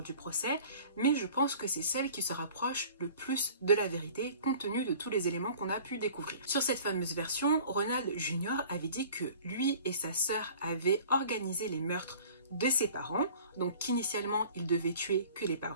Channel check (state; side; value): inverted; both; correlation -0.46